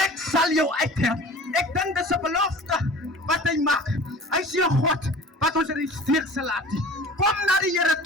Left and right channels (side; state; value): both; normal; correlation 0.42